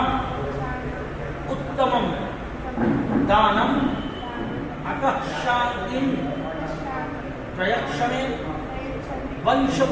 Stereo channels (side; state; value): both; identical; correlation 1.00